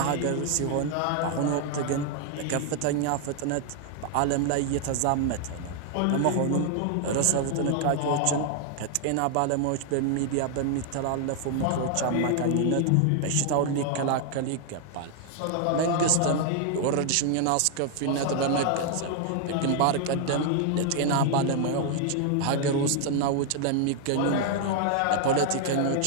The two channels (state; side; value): different; both; correlation 0.00